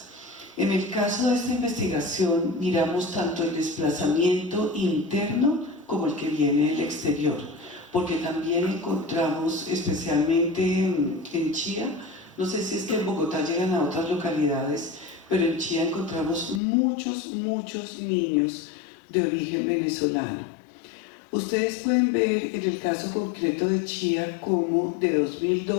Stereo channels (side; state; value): right; drops out; at 16.6 s